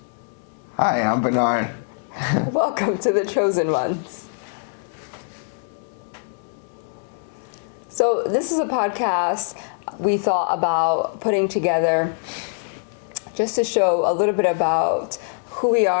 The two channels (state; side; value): silent; right; 63 dB below the other